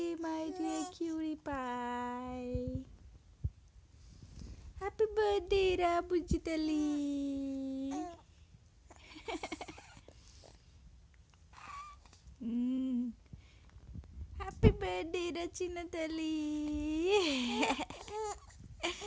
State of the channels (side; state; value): both; identical; correlation 1.00